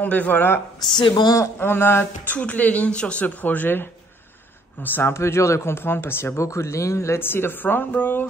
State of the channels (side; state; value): both; normal; correlation 0.63